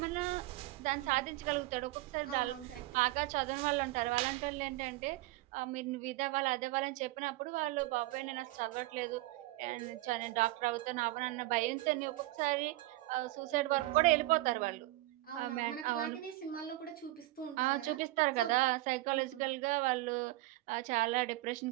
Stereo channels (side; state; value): left; quieter; 18.4 dB